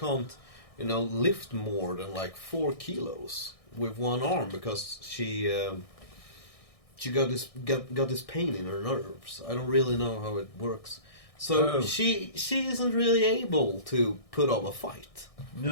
you know, lift more than like 4 kilos with one arm because she got this pain in her nerves. I don't really know how it works. So she isn't really able to put up a fight.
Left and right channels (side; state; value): right; late; 1.6 ms